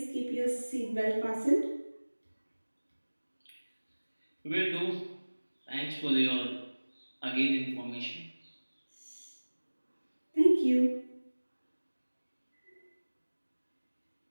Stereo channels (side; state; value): both; inverted; correlation -1.00